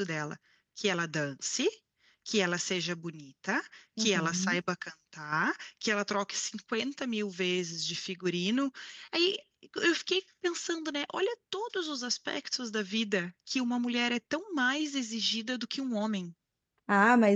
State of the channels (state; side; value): identical; both; correlation 1.00